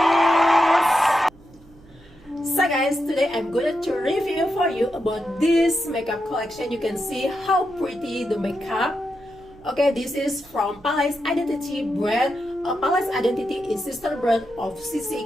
So guys, today I'm going to review for you about this makeup collection. You can see how pretty the makeup. Okay, this is from Palace Identity brand. Palace Identity is sister brand of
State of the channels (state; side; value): noise; right; hum, 26 dB below the sound